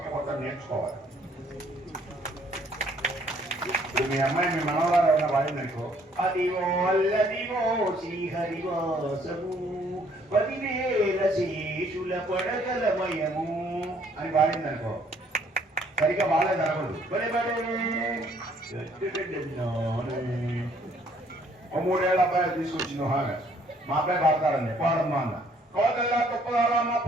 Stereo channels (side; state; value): both; normal; correlation 0.63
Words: మొత్తం నేర్చుకోవాలి. ఇప్పుడు మీ అమ్మాయి మీ మనవరాలు ఎవరన్నా పాడిందనుకో, అదివో అల్లదివో శ్రీహరివాసము 10,000 శేషుల పడగలమయము అని పాడిందనుకో, సరిగ్గా బాగాలేదు అనకూడదు ఓ 3 ఏళ్ళ అబ్బాయి తీసుకొచ్చింది హాగా మా అబ్బాయి పాడతారండి పాడమ్మా అన్న కోదల్లా తుప్పదారమ్మ